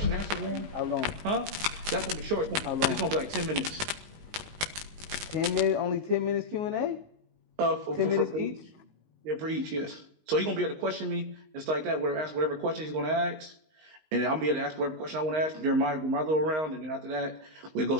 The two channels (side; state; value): left; late; 19 ms